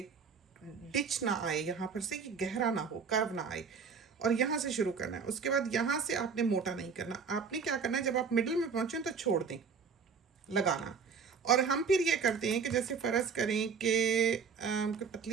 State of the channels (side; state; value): left; quieter; 5.8 dB